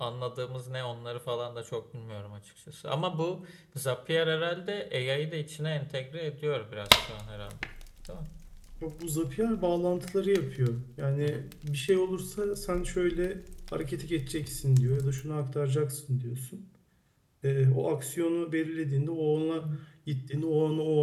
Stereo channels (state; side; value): identical; both; correlation 1.00